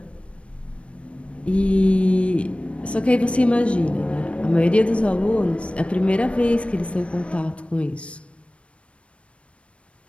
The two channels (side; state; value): right; late; 0.061 ms